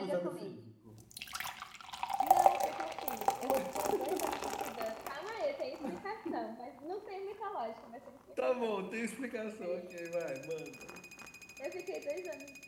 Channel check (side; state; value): both; identical; correlation 1.00